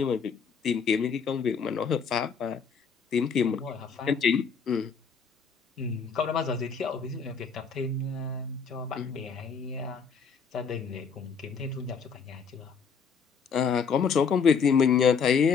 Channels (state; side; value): quieter; right; 6.0 dB